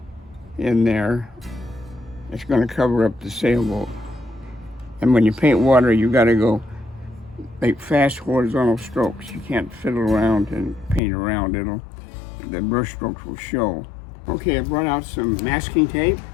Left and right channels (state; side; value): drops out; right; at 11.0 s